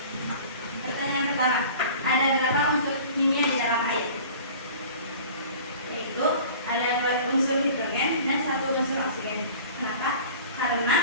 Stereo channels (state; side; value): inverted; both; correlation -0.43